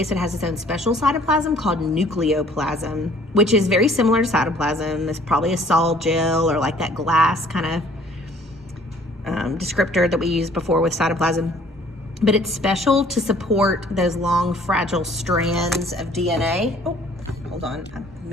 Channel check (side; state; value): both; normal; correlation 0.56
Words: it has its own special cytoplasm called nucleoplasm, which is very similar to cytoplasm. It's probably a sol gel or like that glass kind of descriptor that we used before with cytoplasm. But it's special to support those long, fragile strands of DNA. Oh, hold on, I